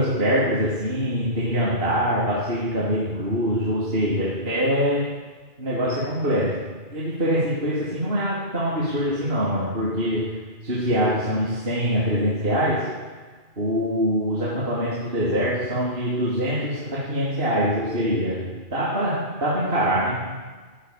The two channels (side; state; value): left; late; 2.4 ms